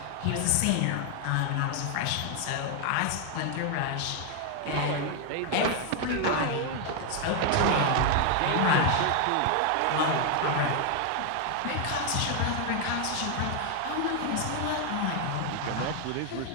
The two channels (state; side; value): different; both; correlation 0.00